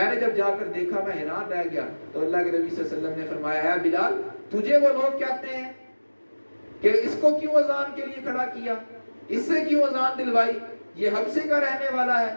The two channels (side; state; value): both; inverted; correlation -1.00